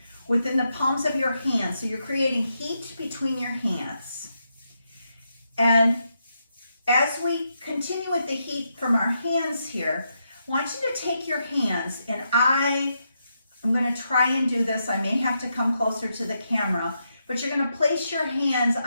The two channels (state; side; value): inverted; both; correlation -0.82